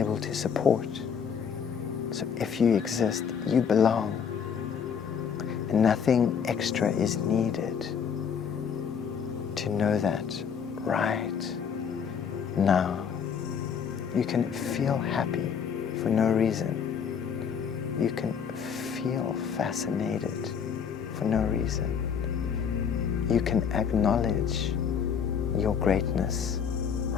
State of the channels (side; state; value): right; quieter; 7.1 dB